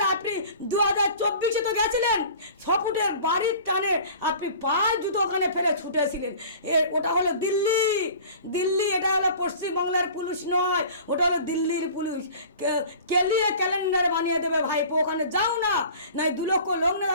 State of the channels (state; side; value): inverted; both; correlation -0.43